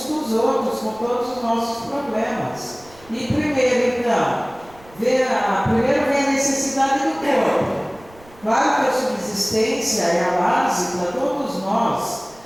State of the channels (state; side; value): noise; right; rumble, 25 dB below the sound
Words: com os outros, com todos os nossos problemas. E primeiro, então, primeiro vem a necessidade do corpo. Claro que a subsistência é a base para todos nós